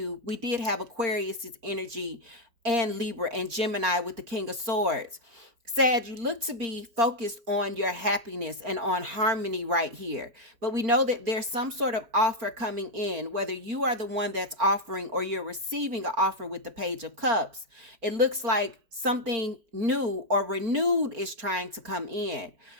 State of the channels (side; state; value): left; late; 4.4 ms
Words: we did have Aquarius's energy and Libra and Gemini with the King of Swords. Sag, you look to be focused on your happiness and on harmony right here. But we know that there's some sort of offer coming in, whether you are the one that's offering or you're receiving an offer with the Page of Cups. It looks like something new or renewed is trying to come in.